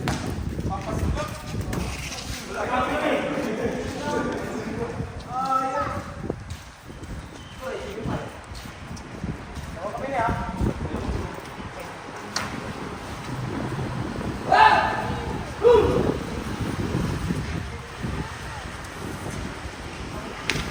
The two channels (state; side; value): identical; both; correlation 1.00